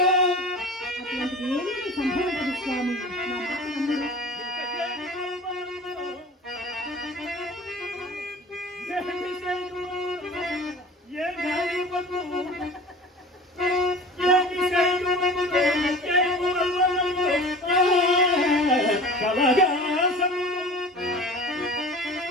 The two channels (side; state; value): both; normal; correlation 0.39